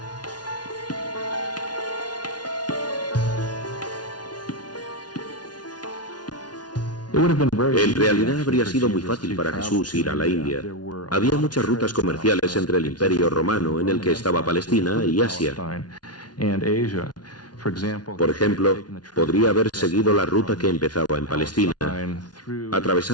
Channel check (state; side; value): late; right; 0.69 ms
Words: En realidad habría sido muy fácil para Jesús ir a la India. Había muchas rutas comerciales entre el Imperio Romano, en el que estaba Palestina, y Asia. Por ejemplo, podría haber seguido la ruta que empezaba en Palestina,